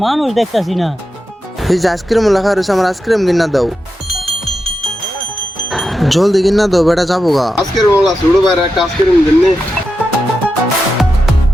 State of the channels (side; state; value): both; normal; correlation 0.89